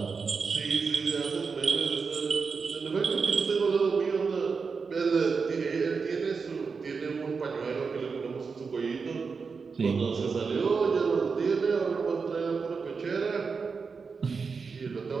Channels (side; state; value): left; quieter; 5.1 dB